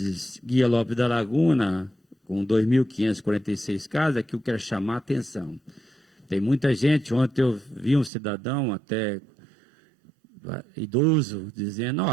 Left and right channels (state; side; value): drops out; left; at 8.1 s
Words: Guia Lopes da Laguna com 2.546 casos, aqui eu quero chamar a atenção. Tem muita gente, ontem eu vi um cidadão até idoso dizendo,